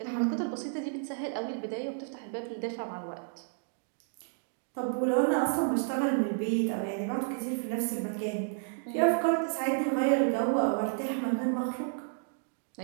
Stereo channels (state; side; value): silent; left; digital silence